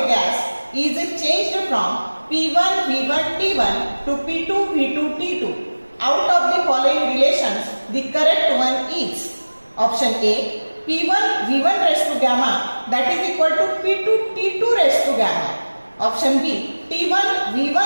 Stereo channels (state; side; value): inverted; both; correlation -1.00